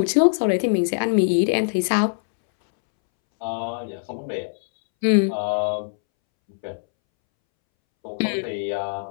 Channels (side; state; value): right; silent; 64 dB below the other